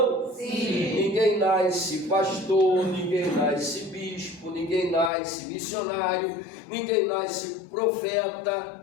Sim. Ninguém nasce pastor, ninguém nasce bispo, ninguém nasce missionário, ninguém nasce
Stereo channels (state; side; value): drops out; right; at 5.1 s